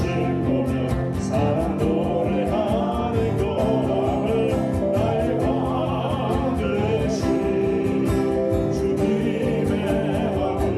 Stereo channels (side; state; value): both; identical; correlation 1.00